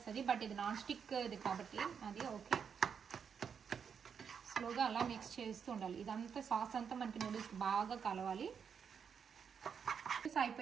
బట్ ఇది నాన్ స్టిక్ ఇది కాబట్టి అది ఓకే. స్లోగా అలా మిక్స్ చేస్తూ ఉండాలి. ఇదంతా సాస్ అంతా మనకి నూడిల్స్కి బాగా కలవాలి.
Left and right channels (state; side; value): quieter; left; 6.9 dB